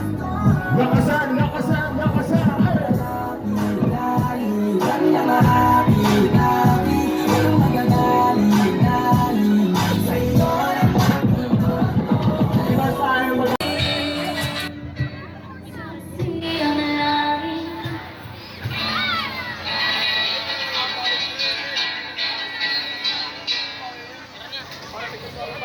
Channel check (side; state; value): both; identical; correlation 1.00